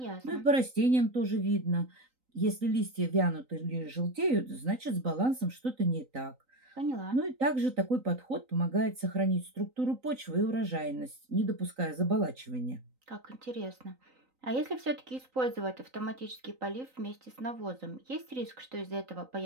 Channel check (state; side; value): late; left; 3.9 ms